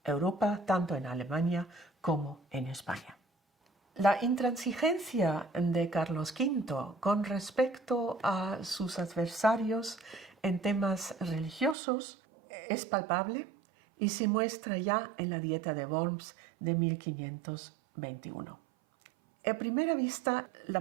Europa, tanto en Alemania como en España. La intransigencia de Carlos V con respecto a sus adversarios en temas religiosos es palpable y se muestra ya en la Dieta de Worms de 1521. A primera vista,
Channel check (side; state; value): left; drops out; at 11.8 s